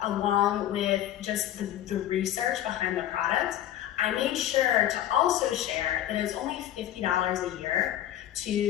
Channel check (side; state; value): right; quieter; 12.3 dB